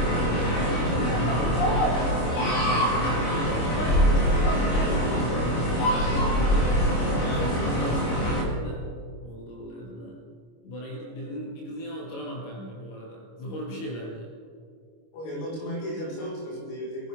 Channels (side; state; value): right; late; 25 ms